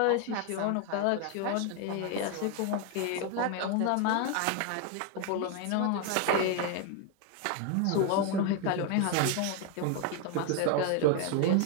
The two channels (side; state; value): both; different; correlation 0.01